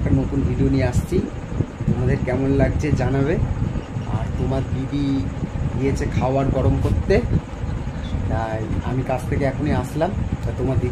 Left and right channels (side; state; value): both; identical; correlation 1.00